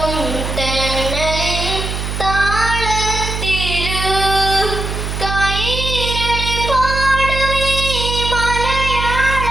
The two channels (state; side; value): noise; right; hum, 4 dB below the sound